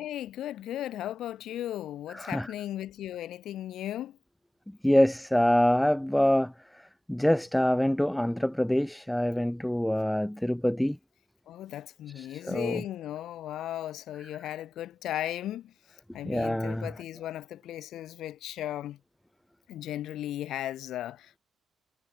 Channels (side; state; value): both; normal; correlation 0.94